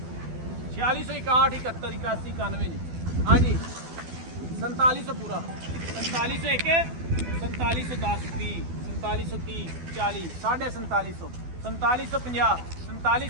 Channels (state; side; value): late; left; 12 ms